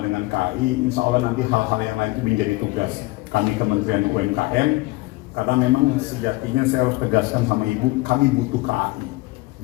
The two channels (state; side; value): quieter; right; 22.1 dB